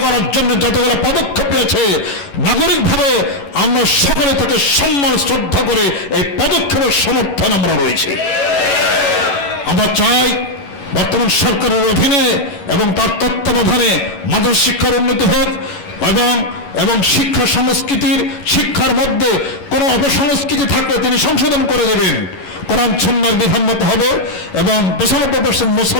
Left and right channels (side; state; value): right; late; 11 ms